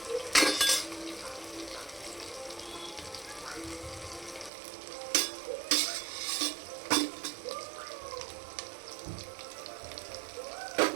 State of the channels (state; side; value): drops out; left; at 4.5 s